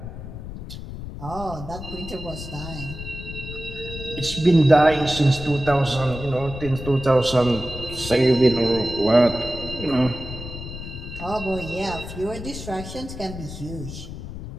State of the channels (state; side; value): noise; left; rumble, 10 dB below the sound